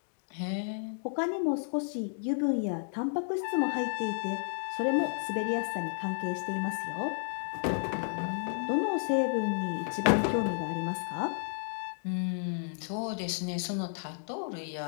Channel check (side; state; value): right; silent; digital silence